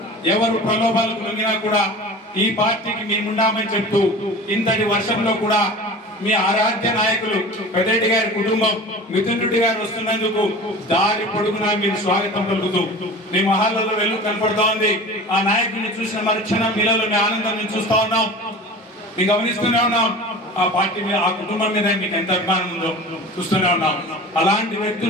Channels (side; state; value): both; normal; correlation 0.37